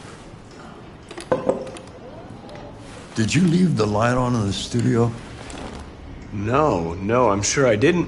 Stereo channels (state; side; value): identical; both; correlation 1.00